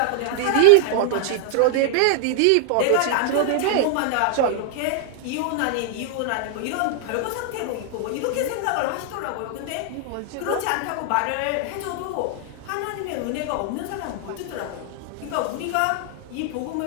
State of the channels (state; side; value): different; both; correlation 0.00